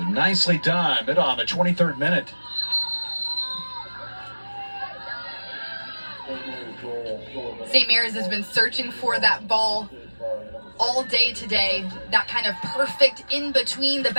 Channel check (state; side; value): inverted; both; correlation -1.00